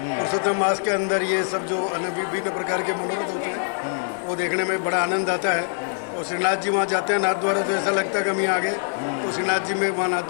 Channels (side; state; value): right; silent; 61 dB below the other